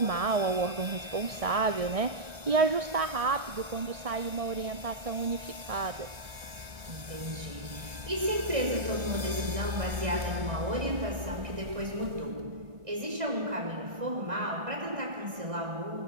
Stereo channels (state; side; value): late; left; 1.3 ms